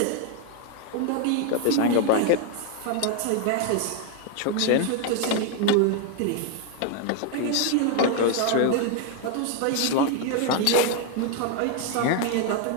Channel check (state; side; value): different; both; correlation 0.01